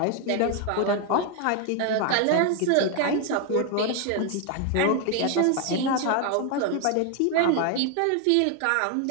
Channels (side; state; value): both; different; correlation 0.00